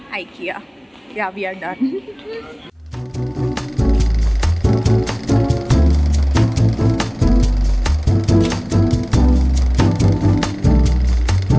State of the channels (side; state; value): both; identical; correlation 1.00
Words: IKEA. Yeah, we are done.